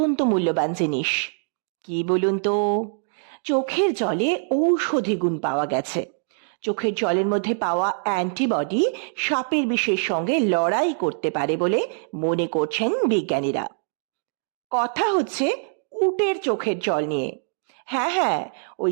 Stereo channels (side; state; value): left; silent; digital silence